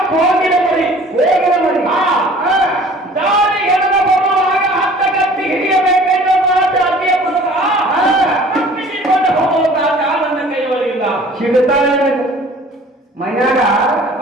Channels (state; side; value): normal; both; correlation 0.49